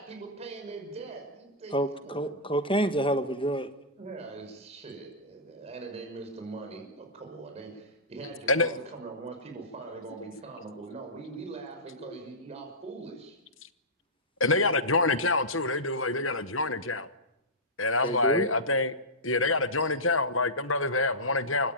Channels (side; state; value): both; normal; correlation -0.16